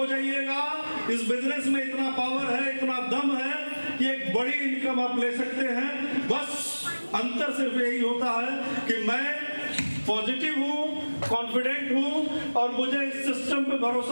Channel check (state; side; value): inverted; both; correlation -1.00